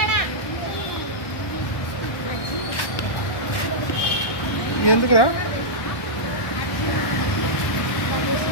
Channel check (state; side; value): late; right; 1.2 ms